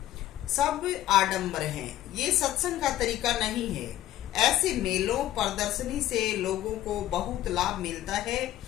सब आडंबर हैं। ये सत्संग का तरीका नहीं है। ऐसे मेलों प्रदर्शनी से लोगों को बहुत लाभ मिलता है,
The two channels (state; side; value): quieter; right; 13.8 dB